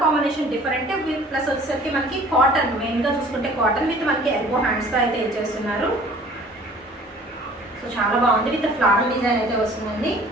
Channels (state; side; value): normal; both; correlation 0.50